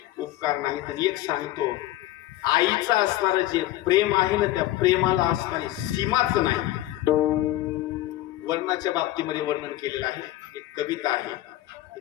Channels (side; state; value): right; quieter; 15.4 dB